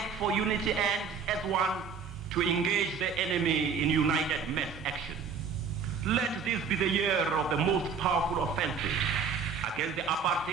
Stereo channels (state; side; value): quieter; left; 5.9 dB